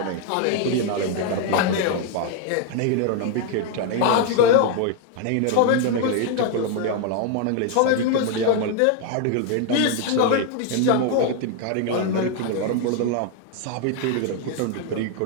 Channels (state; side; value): different; both; correlation 0.00